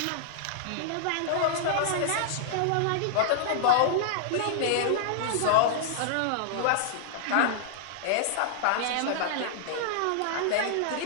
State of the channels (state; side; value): different; both; correlation -0.01